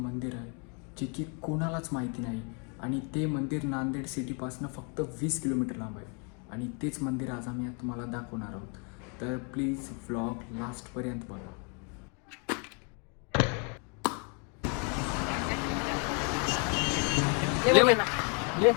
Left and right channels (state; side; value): quieter; right; 36.6 dB